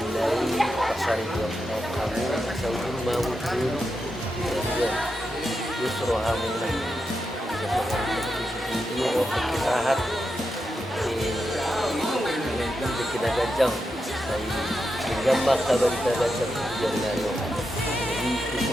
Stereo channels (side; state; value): both; normal; correlation 0.86